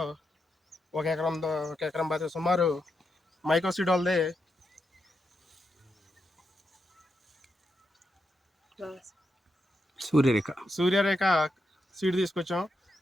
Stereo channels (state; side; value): normal; both; correlation 0.85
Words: ఒక ఎకరం బాధ్యత సుమారు మైకోసీడ్ వాళ్ళది సూర్యరేఖ సీడ్ తీసుకొచ్చాం.